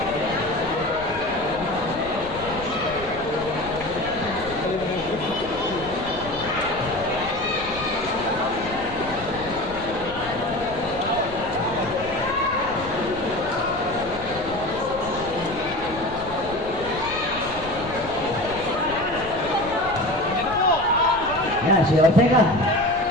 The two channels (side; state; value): left; noise; rumble, 15 dB below the sound